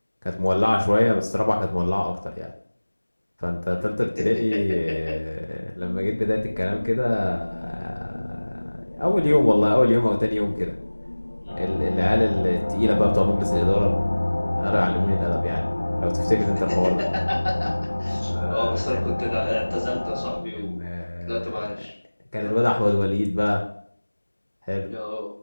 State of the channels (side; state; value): both; inverted; correlation -1.00